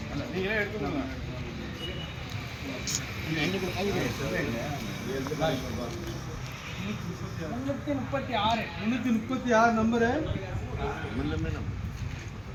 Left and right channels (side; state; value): both; identical; correlation 1.00